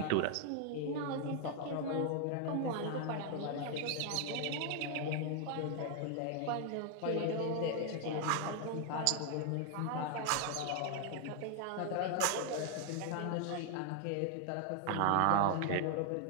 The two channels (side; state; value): both; different; correlation 0.00